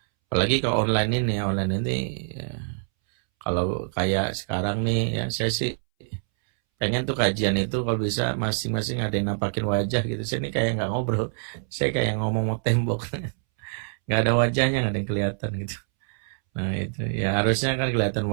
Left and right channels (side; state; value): left; silent; 61 dB below the other